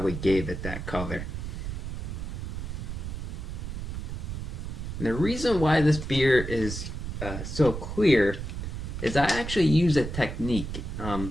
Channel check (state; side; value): noise; right; rumble, 6 dB below the sound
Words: gave it that color. And the reason why this beer is so clear is I actually use a technique.